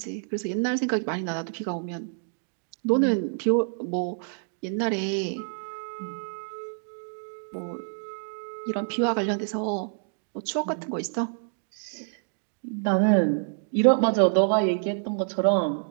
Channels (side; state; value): left; silent; digital silence